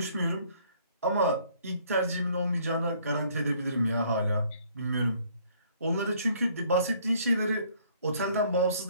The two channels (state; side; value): inverted; both; correlation -0.61